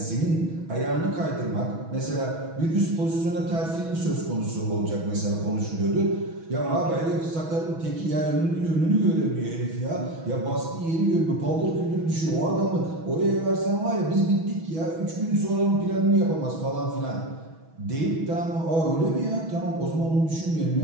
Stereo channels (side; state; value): left; late; 6.2 ms